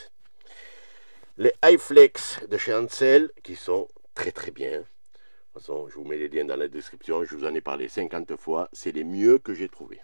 Les iFlex de chez Ansel qui sont très très bien. De toute façon, je vous mets les liens dans la description. Je vous en ai parlé 50 fois. C'est les mieux que j'ai trouvés.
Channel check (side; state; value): both; inverted; correlation -1.00